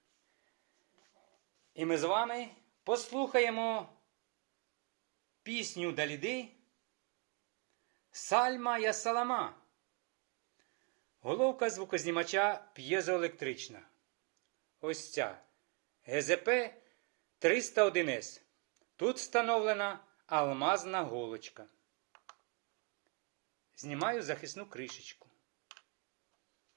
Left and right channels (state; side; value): quieter; left; 33.8 dB